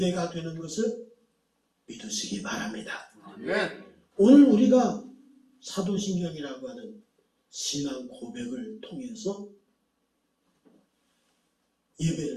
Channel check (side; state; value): both; identical; correlation 1.00